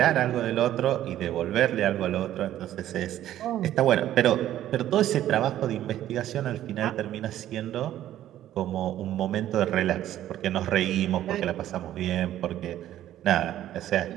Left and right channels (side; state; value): left; quieter; 12.5 dB